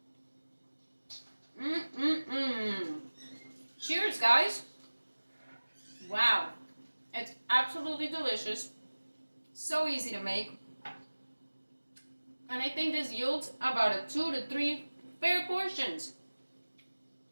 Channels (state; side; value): inverted; both; correlation -1.00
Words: Cheers, guys. Wow. It's absolutely delicious. So easy to make. And I think this yields about a 2 to 3 fair portions.